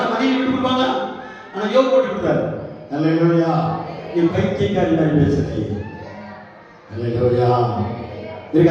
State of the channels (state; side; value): identical; both; correlation 1.00